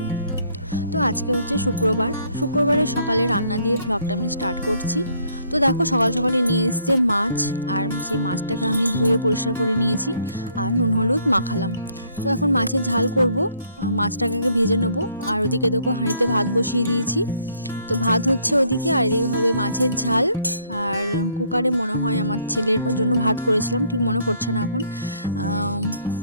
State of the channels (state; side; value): inverted; both; correlation -0.65